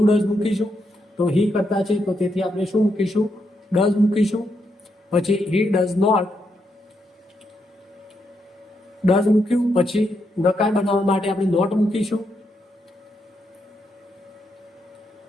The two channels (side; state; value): both; normal; correlation 0.81